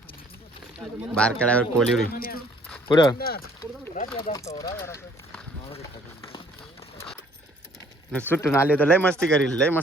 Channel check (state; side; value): normal; both; correlation 0.59